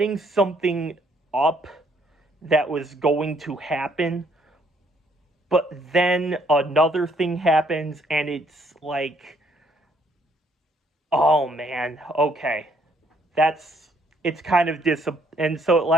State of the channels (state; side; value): normal; both; correlation 0.67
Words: something up that was going to happen, but then another thing happens, and it's like, oh man, okay, it's kind of and so it